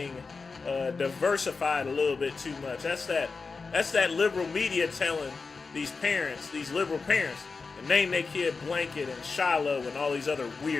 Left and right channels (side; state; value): right; quieter; 4.5 dB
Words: diversified a little bit too much. That's that liberal media telling these parents, these liberal parents, to name their kid Blanket and Shiloh and all these other